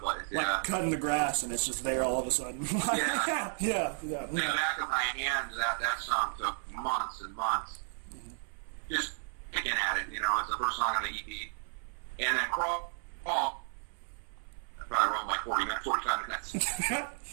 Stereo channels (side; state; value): left; silent; 56 dB below the other